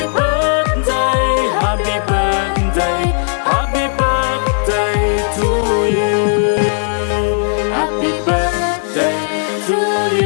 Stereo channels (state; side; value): silent; right; 69 dB below the other